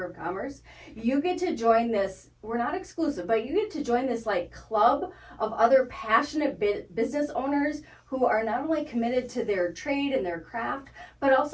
of Commerce, you get to join this, we're not exclusive, but you get to join this like club of other passionate business owners who are not only committed to their trade and their craft, but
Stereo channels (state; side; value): identical; both; correlation 1.00